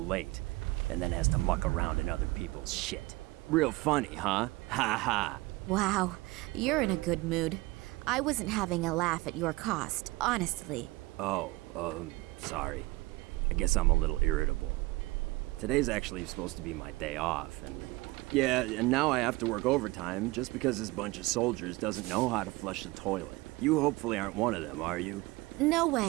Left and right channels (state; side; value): quieter; left; 21.6 dB